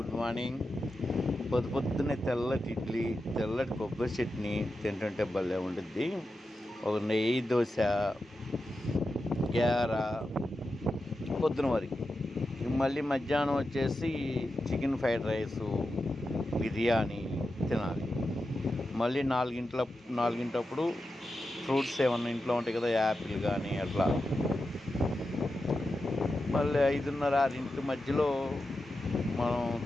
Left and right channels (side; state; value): both; normal; correlation 0.90